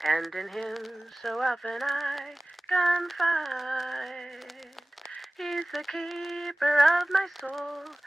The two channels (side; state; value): both; normal; correlation 0.98